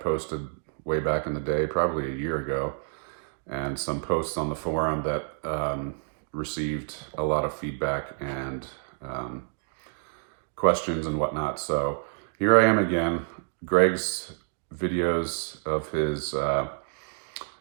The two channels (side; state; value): left; silent; digital silence